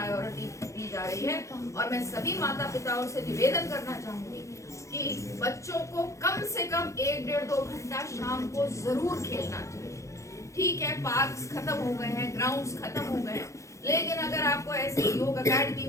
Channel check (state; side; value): late; right; 0.15 ms